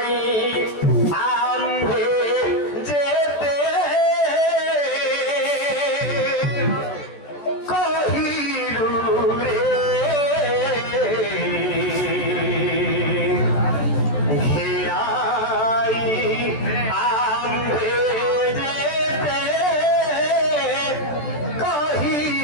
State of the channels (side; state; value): right; late; 14 ms